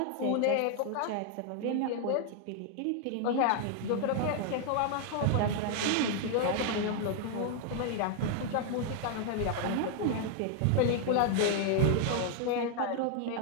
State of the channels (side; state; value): both; different; correlation 0.00